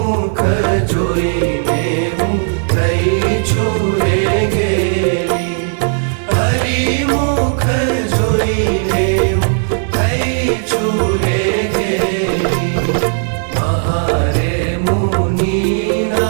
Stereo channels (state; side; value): silent; left; 61 dB below the other